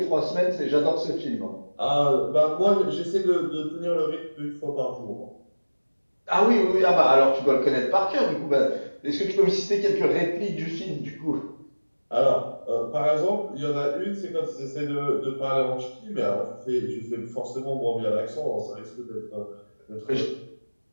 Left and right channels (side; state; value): both; inverted; correlation -1.00